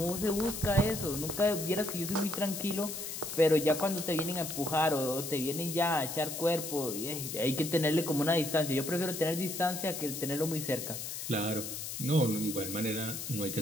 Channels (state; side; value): noise; left; hiss, 6 dB below the sound